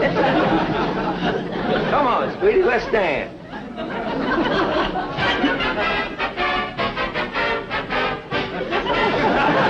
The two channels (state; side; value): identical; both; correlation 1.00